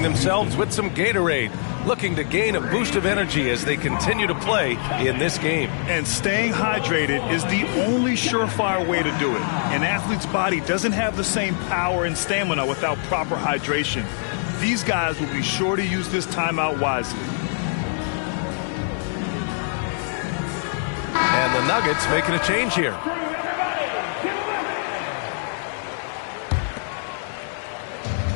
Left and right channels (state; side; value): silent; right; digital silence